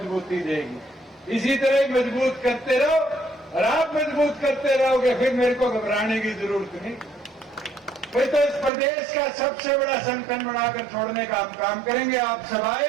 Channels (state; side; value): drops out; left; at 8.7 s